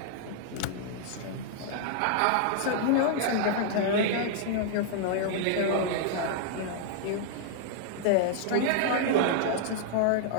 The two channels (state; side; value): different; both; correlation -0.01